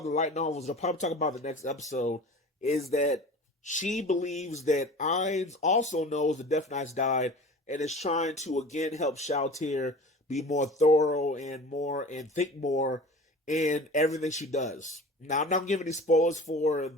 the light novels, they'll probably talk about the next episode, is that she believes that Erens also knows the Death Knights died and is trying to again help Shalltear be more thorough and think more in everything she does. Now, I'm not giving any spoilers for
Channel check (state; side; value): normal; both; correlation 0.39